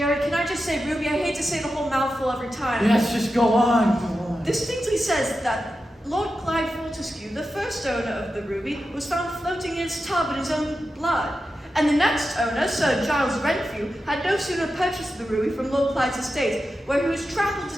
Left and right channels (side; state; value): both; normal; correlation 0.91